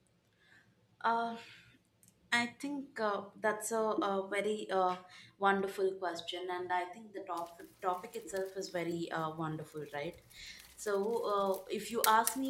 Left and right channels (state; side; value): identical; both; correlation 1.00